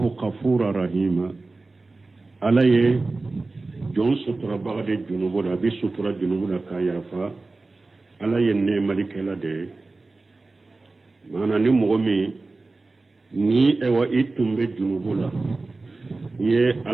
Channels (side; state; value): left; quieter; 3.4 dB